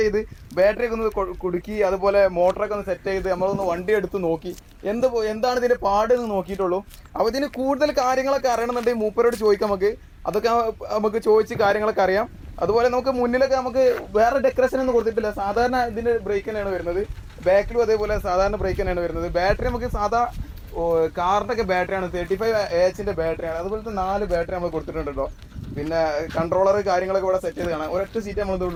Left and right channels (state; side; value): identical; both; correlation 1.00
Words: ചെയ്ത് ബാറ്ററിയൊക്കെ ഒന്ന് കുടുക്കി, അതുപോലെ മോട്ടറൊക്കെ ഒന്ന് സെറ്റ് ചെയ്ത് നമ്മളൊന്ന് വണ്ടി എടുത്ത് നോക്കി എന്താണ് ഇതിൻ്റെ പാടെന്ന് നോക്കിയിട്ടുള്ളൂ. അപ്പോൾ ഇതിന് കൂടുതൽ കാര്യങ്ങളൊക്കെ അറിയണമെന്നുണ്ടെങ്കിൽ മൂപ്പരോട് ചോദിക്കാം. അതൊക്കെ നമുക്ക് ചോദിച്ച് കാര്യങ്ങളൊക്കെ അറിയാം. അതുപോലെ നമുക്ക് മുന്നിലൊക്കെ നമുക്ക് വേറെ ഡെക്കറേഷൻ ഒന്നും കൊടുത്തിട്ടില്ല. സാധാരണ ഇതിൻ്റെ ബ്രേക്ക് തന്നെയാണ് വരുന്നത്. ബാക്കിലും അതേപോലെ സാധാരണ ബ്രേക്ക് തന്നെയാണ് വരുന്നത്. ബാറ്ററി നമുക്ക് സാധാ കാറിൻ്റെ ഒക്കെ ബാറ്ററിയാണ്, 35 AHൻ്റെ ബാറ്ററിയാണ്. അതുപോലത്തെ 4 ബാറ്ററി നമ്മൾ കൊടുത്തിട്ടുണ്ട് കേട്ടോ. പിന്നെ കൺട്രോളർ കാര്യങ്ങളൊക്കെ ഇവിടെ സെറ്റ് ചെയ്ത് കാണാം. ഒരൊറ്റ സീറ്റ് നമ്മൾ